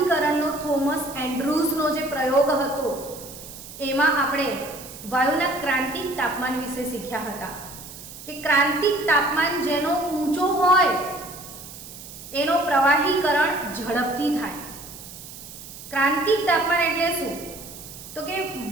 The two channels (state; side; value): noise; right; hiss, 14 dB below the sound